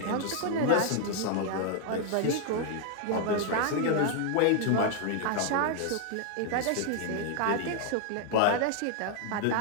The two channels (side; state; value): both; different; correlation 0.00